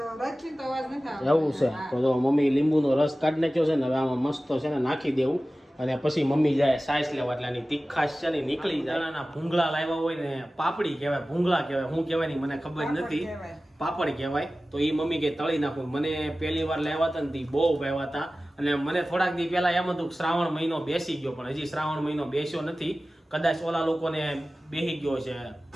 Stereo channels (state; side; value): normal; both; correlation 0.96